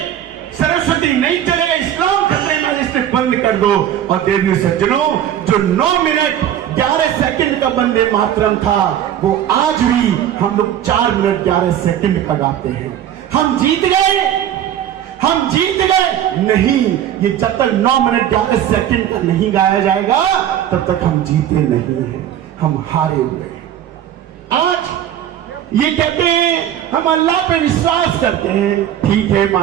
सरस्वती नहीं चलेगा, इस्लाम खतरे में, इसे बंद कर दो। और देवी सज्जनों, जो 9 मिनट 11 सेकंड का वंदे मातरम था वो आज भी हम लोग 4 मिनट 11 सेकंड का गाते हैं। हम जीत गए, हम जीत गए नहीं, ये जब तक 9 मिनट 11 सेकंड का नहीं गाया जाएगा तब तक हम जीते नहीं हैं, हम हारे हुए। आज ये कहते हैं हम अल्लाह पे विश्वास करते हैं, ठीक है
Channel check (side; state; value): left; quieter; 10.7 dB